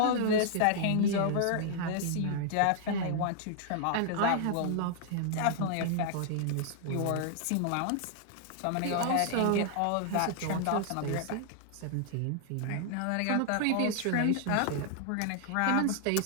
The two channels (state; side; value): different; both; correlation -0.01